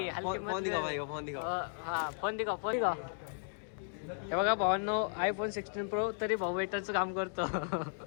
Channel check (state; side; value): silent; right; digital silence